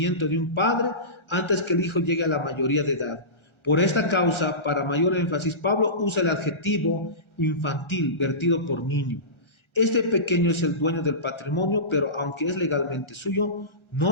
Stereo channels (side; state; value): right; late; 1.4 ms